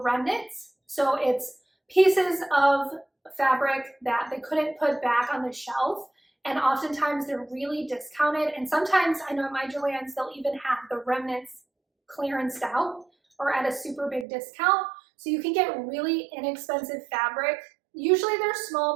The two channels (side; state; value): left; drops out; at 14.2 s